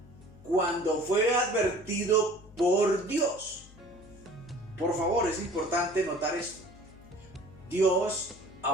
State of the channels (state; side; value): noise; left; hum, 22 dB below the sound